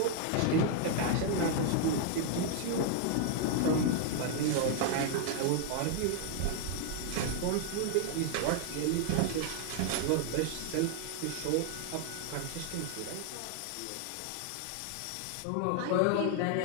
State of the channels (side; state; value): both; different; correlation 0.00